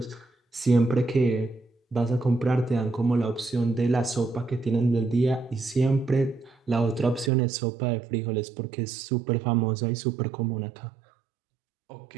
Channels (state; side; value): drops out; left; at 7.3 s